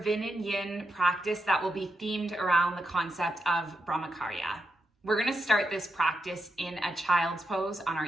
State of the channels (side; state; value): both; normal; correlation 0.85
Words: Vin Yin practice that will be themed around the concept of BRAHMACHARYA. We're going to start this practice in a child's pose on our